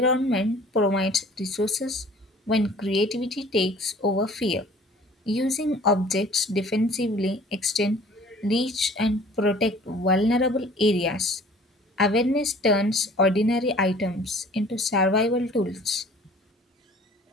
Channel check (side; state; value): both; normal; correlation 0.50